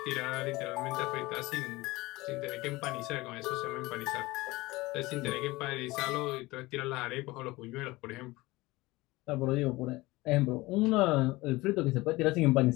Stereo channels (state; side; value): quieter; right; 20.6 dB